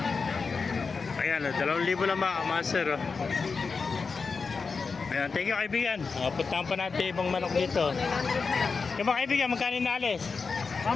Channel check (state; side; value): quieter; right; 4.8 dB